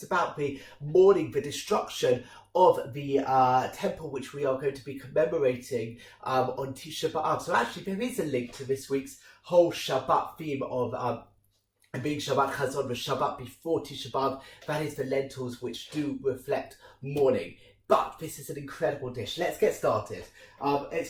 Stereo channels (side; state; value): both; identical; correlation 1.00